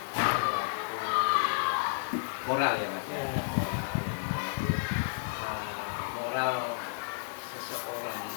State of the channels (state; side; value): silent; right; digital silence